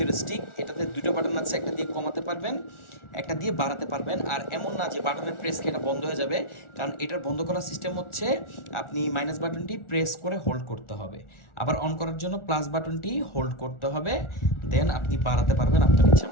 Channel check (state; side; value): late; right; 1.4 ms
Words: এটাতে দুটো বাটন আছে, একটা দিয়ে কমাতে পারবেন, একটা দিয়ে বাড়াতে পারবেন। আর এমন না যে বাটনের প্রেস খেয়ে এটা বন্ধ হয়ে যাবে, কারণ এটার বন্ধ করার সিস্টেম হচ্ছে আপনি মাইনাস বাটনটি প্রেস করে হোল্ড করতে হবে, আবার অন করার জন্য প্লাস বাটনটি হোল্ড করতে হবে, দেন আপনি বাড়াতে পারবেন আপনার ইচ্ছা